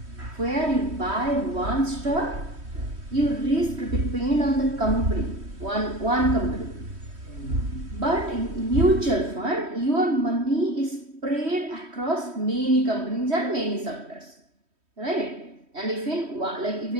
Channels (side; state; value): left; late; 3.1 ms